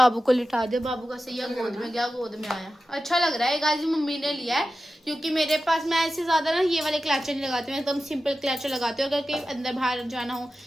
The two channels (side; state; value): both; normal; correlation 0.93